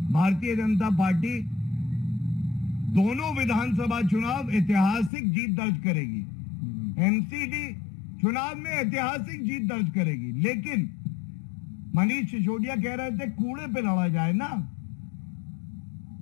भारतीय जनता पार्टी दोनों विधानसभा चुनाव ऐतिहासिक जीत दर्ज करेगी। एमसीडी चुनाव में ऐतिहासिक जीत दर्ज करेगी। लेकिन मनीष सिसोदिया कह रहे थे कूड़े पे लड़ा जाए ना।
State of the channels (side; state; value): right; drops out; at 5.1 s